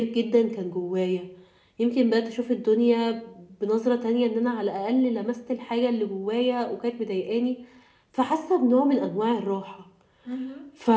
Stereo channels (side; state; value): both; identical; correlation 1.00